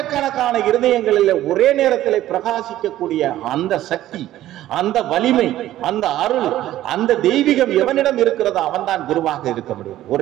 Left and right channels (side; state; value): left; quieter; 13.9 dB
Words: இருதயங்களில் ஒரே நேரத்தில் பிரகாசிக்கக்கூடிய அந்த சக்தி, அந்த வலிமை, அந்த அருள், அந்த தெய்வீகம் எவனிடம் இருக்கிறதோ அவன் தான் குருவாக இருக்க முடியும்.